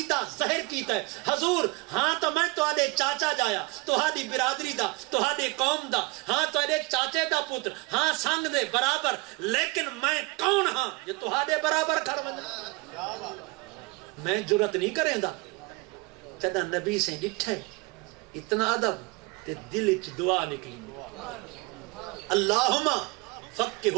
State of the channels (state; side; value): quieter; left; 25.3 dB